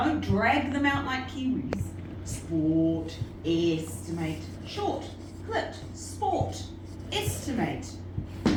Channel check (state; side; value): identical; both; correlation 1.00